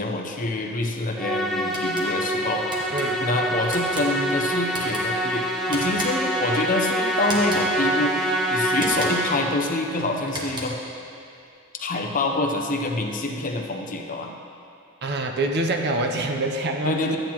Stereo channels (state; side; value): normal; both; correlation 0.36